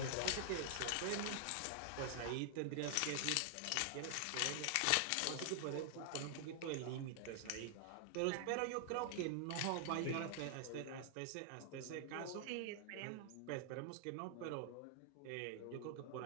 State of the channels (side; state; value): both; different; correlation 0.00